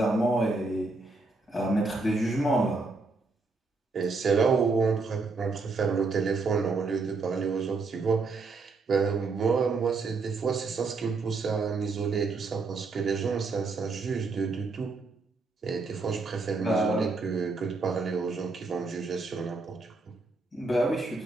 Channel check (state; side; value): quieter; left; 3.9 dB